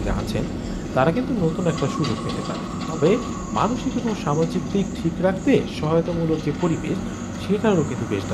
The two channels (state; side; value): identical; both; correlation 1.00